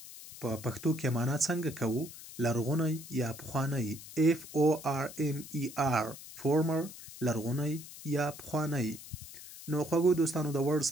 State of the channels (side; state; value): left; noise; hiss, 15 dB below the sound